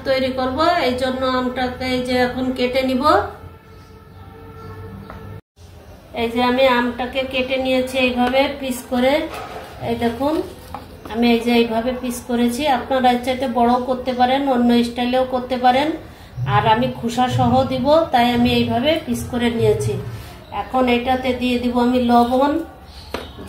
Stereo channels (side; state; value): both; identical; correlation 1.00